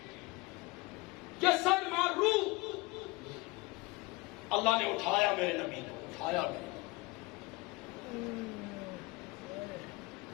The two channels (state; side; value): quieter; right; 23.6 dB